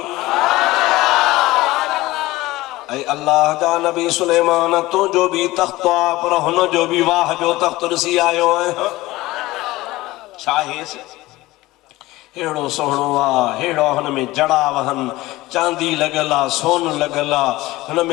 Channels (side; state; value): right; quieter; 18.6 dB